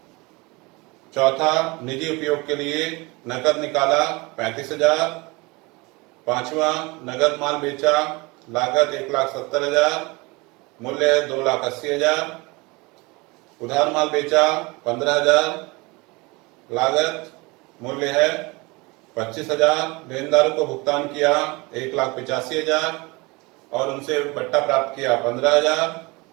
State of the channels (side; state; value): left; quieter; 25.1 dB